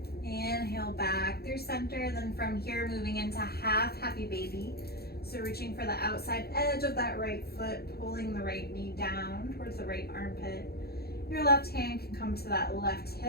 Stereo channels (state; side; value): late; right; 0.46 ms